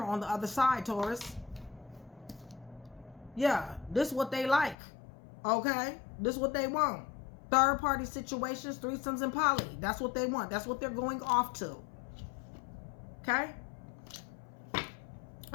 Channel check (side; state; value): right; drops out; at 4.8 s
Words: on the other side, Taurus. Yeah, this is what they like. Okay, this is what they want. Third-party situations, threesomes, and poly. That's what they want. That's what they're going off to. Okay.